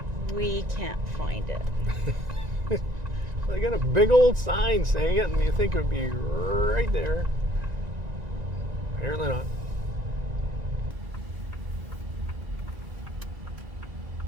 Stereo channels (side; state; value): left; late; 1.9 ms